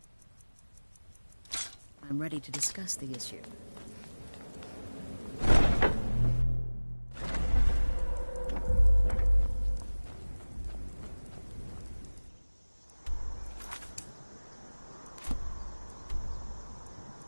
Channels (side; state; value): both; inverted; correlation -1.00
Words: I'm ready to discuss the issue.